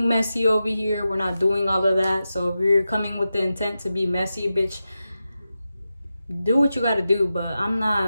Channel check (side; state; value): both; inverted; correlation -0.91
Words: messy over here, we're not doing all of that. So if you're coming with the intent to be messy, bitch, do what you gotta do. But I'm